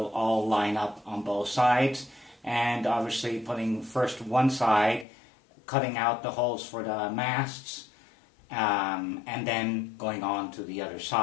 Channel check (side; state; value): right; drops out; at 5.1 s